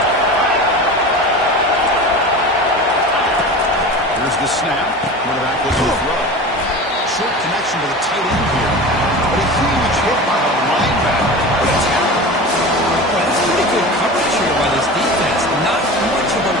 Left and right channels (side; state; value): both; normal; correlation 0.32